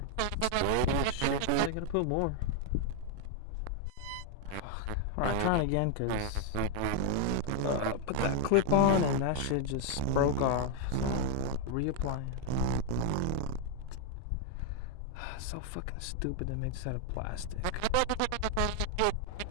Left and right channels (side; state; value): both; different; correlation 0.00